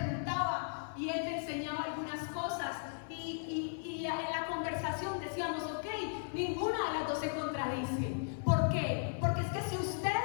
y él me enseñaba algunas cosas, y en la conversación decíamos: ok, ninguna de las dos se contradice. ¿Por qué? Porque es que si usted,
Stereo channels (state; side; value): silent; right; 53 dB below the other